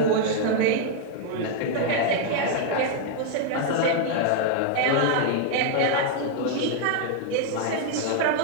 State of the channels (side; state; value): both; different; correlation 0.00